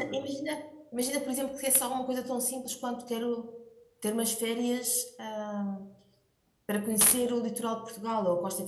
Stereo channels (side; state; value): both; identical; correlation 1.00